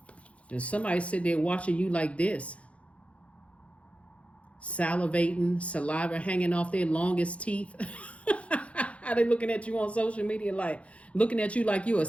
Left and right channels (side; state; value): right; late; 0.063 ms